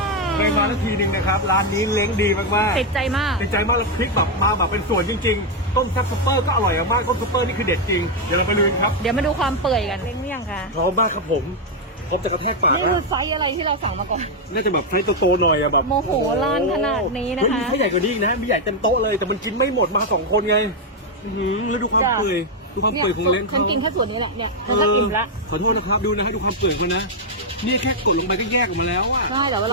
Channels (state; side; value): normal; both; correlation 0.01